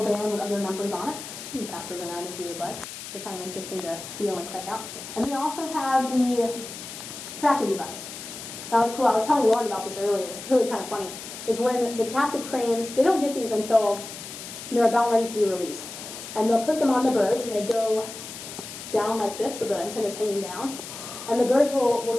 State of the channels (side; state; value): left; noise; hiss, 11 dB below the sound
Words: with other numbers on it. You can pass those around if you would like. They're kind of interesting to feel and check out. And they also have the tracking device. That was cool. I was telling Lauren about this earlier. It's really kind of funny. Is when the captive cranes, they don't get these until they're about ready to be released. And they'll put them on the birds, and they go down like this, so the antenna's hanging down. And the birds will